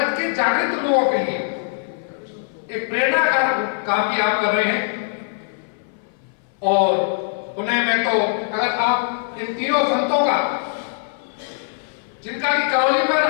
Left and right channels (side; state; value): right; silent; 58 dB below the other